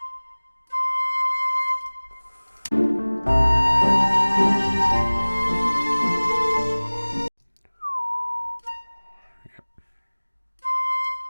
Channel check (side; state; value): both; inverted; correlation -1.00